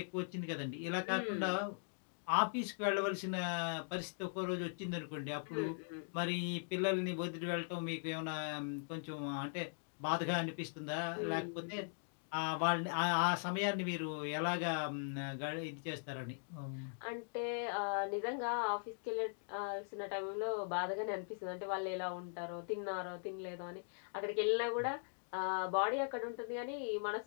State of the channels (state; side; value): silent; right; digital silence